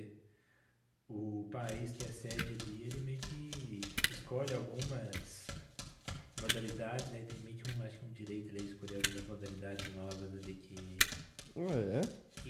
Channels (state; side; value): identical; both; correlation 1.00